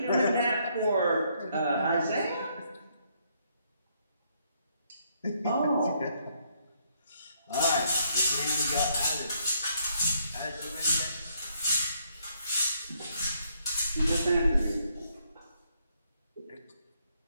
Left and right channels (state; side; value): inverted; both; correlation -0.72